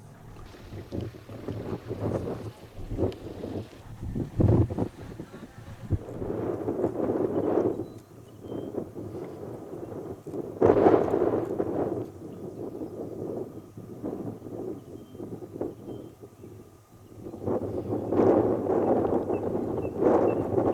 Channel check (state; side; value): identical; both; correlation 1.00